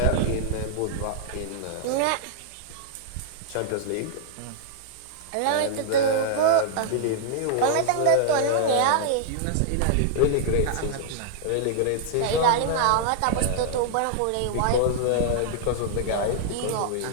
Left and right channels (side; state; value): both; different; correlation -0.01